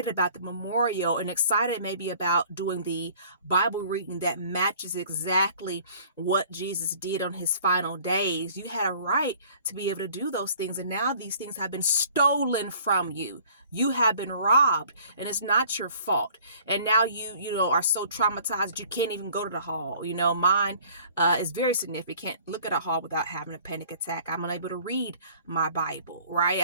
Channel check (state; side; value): inverted; both; correlation -0.52